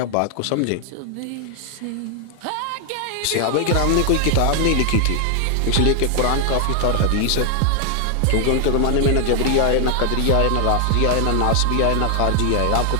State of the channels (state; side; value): different; both; correlation 0.00